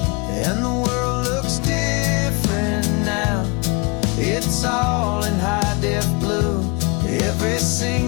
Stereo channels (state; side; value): quieter; right; 29.4 dB